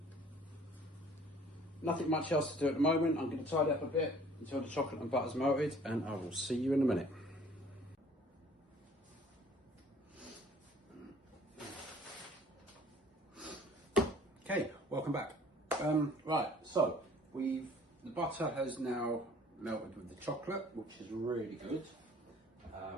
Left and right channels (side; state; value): both; normal; correlation 0.54